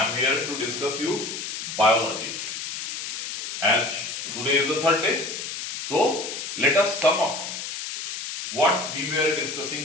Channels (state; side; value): noise; left; hiss, 6 dB below the sound